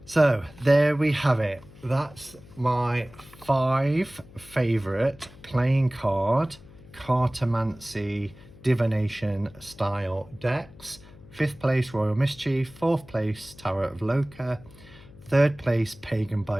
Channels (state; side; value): noise; left; hum, 21 dB below the sound